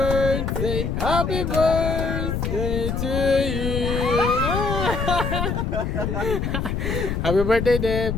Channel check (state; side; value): noise; left; rumble, 1 dB below the sound